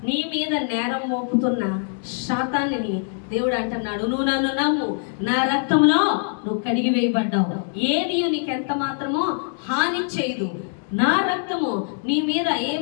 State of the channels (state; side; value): silent; right; 63 dB below the other